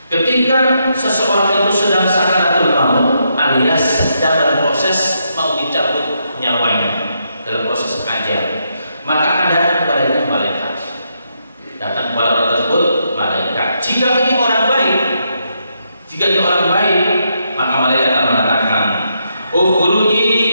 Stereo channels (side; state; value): both; inverted; correlation -0.79